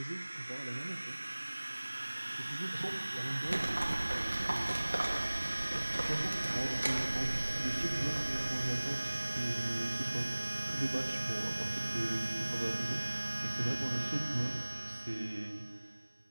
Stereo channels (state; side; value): inverted; both; correlation -1.00